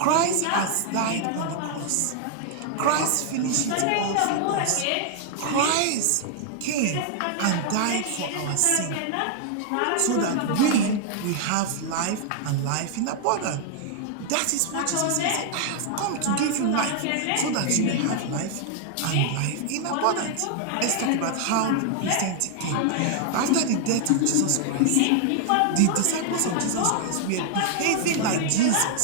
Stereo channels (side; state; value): both; different; correlation 0.00